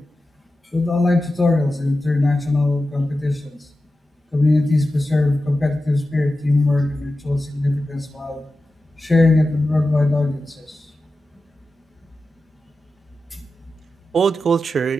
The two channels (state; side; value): normal; both; correlation 0.93